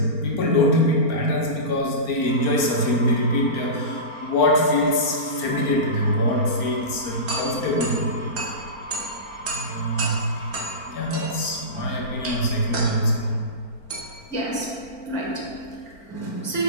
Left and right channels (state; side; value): late; right; 4.4 ms